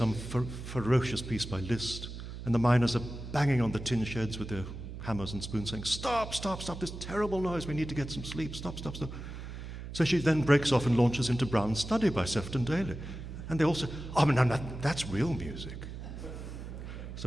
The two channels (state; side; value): noise; right; hum, 9 dB below the sound